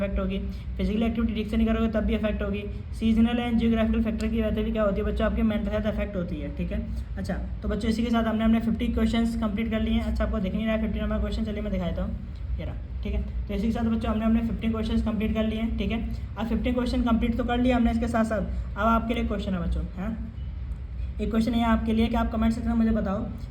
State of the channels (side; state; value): both; identical; correlation 1.00